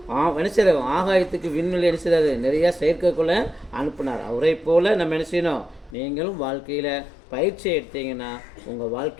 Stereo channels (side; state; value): right; drops out; at 6.0 s